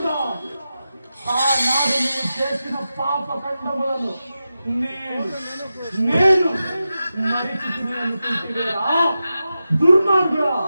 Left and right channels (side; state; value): both; inverted; correlation -0.92